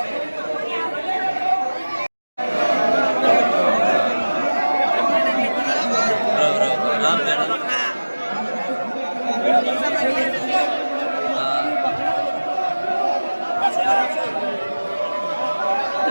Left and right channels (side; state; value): both; inverted; correlation -1.00